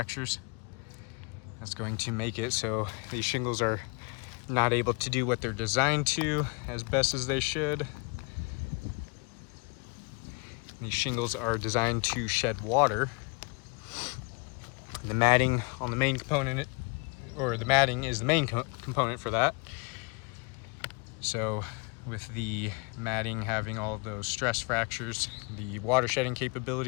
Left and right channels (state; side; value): quieter; right; 33.0 dB